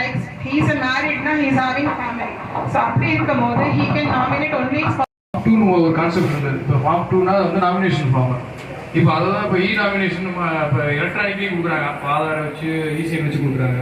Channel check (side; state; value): both; identical; correlation 1.00